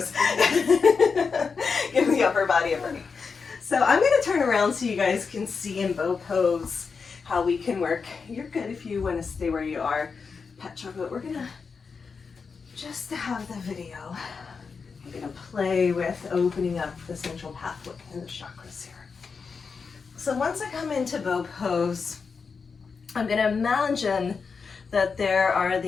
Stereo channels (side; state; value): right; quieter; 5.3 dB